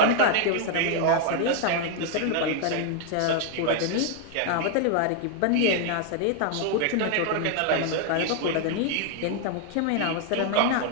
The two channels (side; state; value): both; different; correlation 0.00